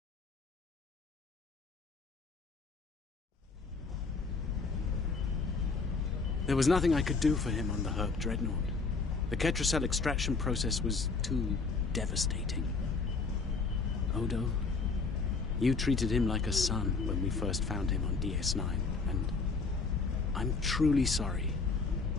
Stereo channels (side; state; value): right; quieter; 4.4 dB